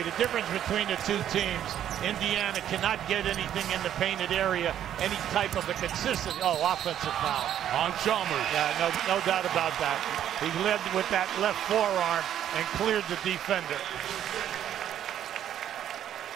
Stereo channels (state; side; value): quieter; left; 10.6 dB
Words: the difference between the two teams, Indiana cannot get anything in the painted area, any type of a consistent, offensive foul. On Chalmers. Yeah, no doubt about that. He led with that left forearm and cleared the defender.